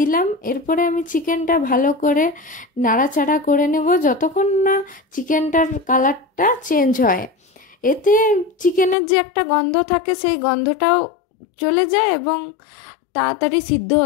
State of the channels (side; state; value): right; drops out; at 9.0 s